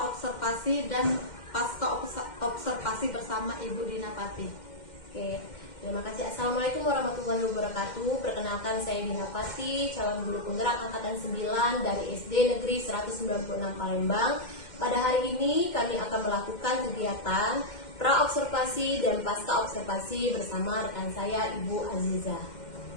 dan pasca observasi bersama Ibu Dina Pati. Oke, terima kasih. Assalamualaikum warahmatullahi wabarakatuh. Perkenalkan, saya Dina Pati, calon guru penggerak angkatan 9 dari SD Negeri 196 Palembang. Pada hari ini kami akan melakukan kegiatan pra-observasi dan pasca observasi bersama rekan saya, Ibu Aziza.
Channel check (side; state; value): right; late; 2.1 ms